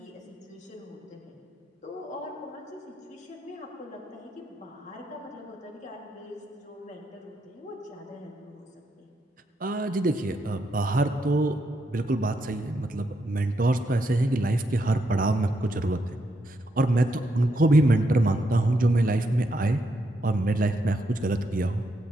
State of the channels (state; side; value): normal; both; correlation 0.79